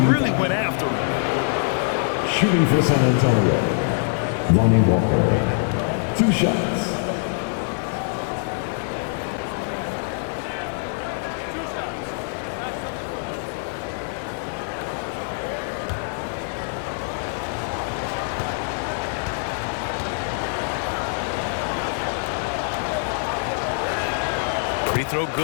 went after him. Shooting for San Antonio, Lonnie Walker. 2 shots. Free throw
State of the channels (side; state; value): right; silent; 63 dB below the other